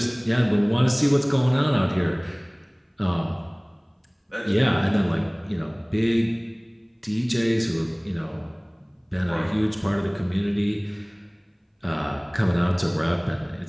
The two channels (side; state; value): both; identical; correlation 1.00